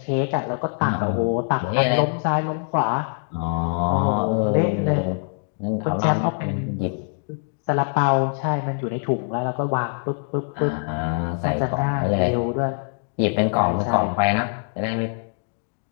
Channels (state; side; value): silent; right; 55 dB below the other